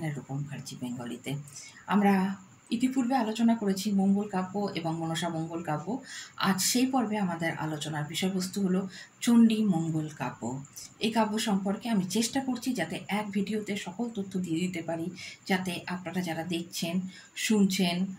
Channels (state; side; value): identical; both; correlation 1.00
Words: রূপম মুখার্জি বেঙ্গলিতে। আমরা ইতিপূর্বে আলোচনা করেছি মঙ্গল কাব্য এবং মনসা মঙ্গল কাব্য। আজ সেই পর্বে আমাদের আলোচনার বিষয়বস্তু হলো চণ্ডী মঙ্গল কাব্য। এই কাব্য সম্পর্কে আমি চেষ্টা করছি যাতে এক ভিডিওতে সকল তথ্য দিয়ে দিতে পারি, যাতে আপনারা যারা দেখছেন শুনছেন